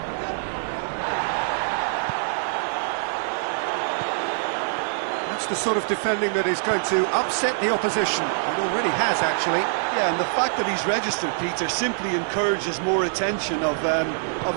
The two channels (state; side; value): silent; left; digital silence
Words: That's the sort of defending that is going to upset the opposition. It already has, actually. Yeah, and the fact that he's registered, Peter, simply encourages more attention of a